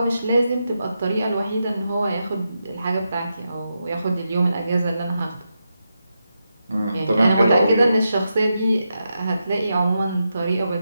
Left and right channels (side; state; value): both; inverted; correlation -0.86